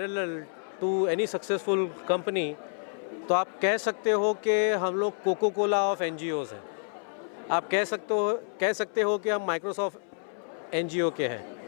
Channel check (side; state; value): right; silent; 59 dB below the other